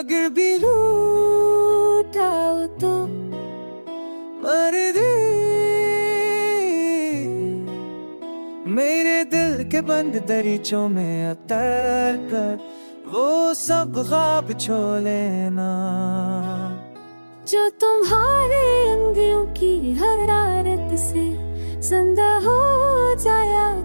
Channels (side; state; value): both; inverted; correlation -1.00